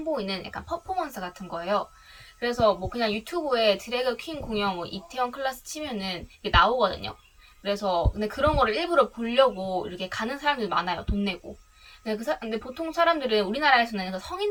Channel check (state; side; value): identical; both; correlation 1.00